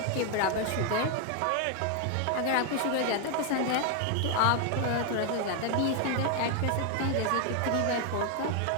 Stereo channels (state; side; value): different; both; correlation 0.01